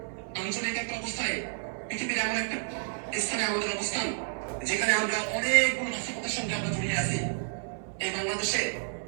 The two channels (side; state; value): left; silent; 56 dB below the other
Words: যেখানে আমরা অনেকগুলো নাশকতার সঙ্গে আমরা জড়িয়ে আছি, এই বাংলাদেশে